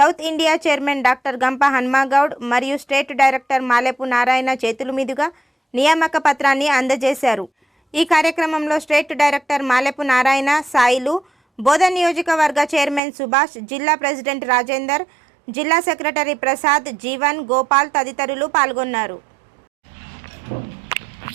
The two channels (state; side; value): drops out; left; at 13.0 s